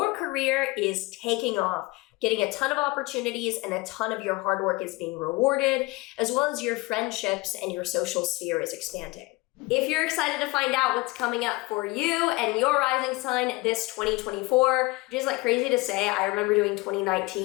career is taking off, getting a ton of opportunities and a ton of your hard work is being rewarded, as well as your friendships and your social sphere is expanding. If you're excited to find out what's coming up for you and your rising sign this 2024, which is like crazy to say, I remember doing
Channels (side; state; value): right; quieter; 23.3 dB